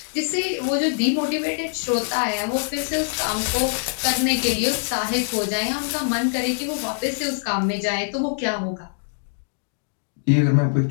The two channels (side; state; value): right; silent; digital silence